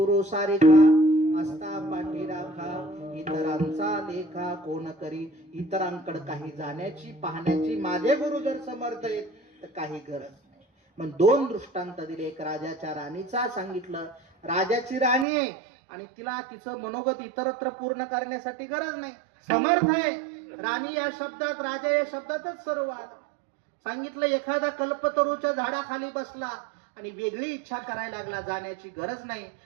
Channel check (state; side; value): drops out; left; at 15.2 s